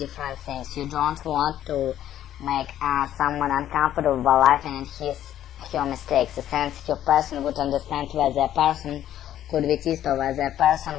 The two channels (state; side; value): quieter; right; 11.7 dB